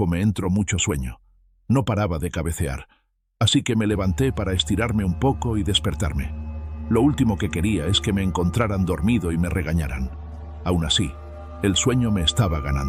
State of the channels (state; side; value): identical; both; correlation 1.00